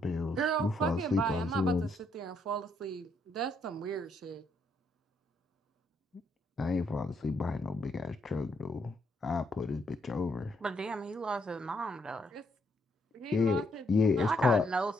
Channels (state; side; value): normal; both; correlation 0.74